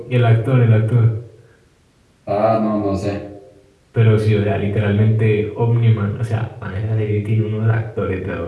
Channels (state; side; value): identical; both; correlation 1.00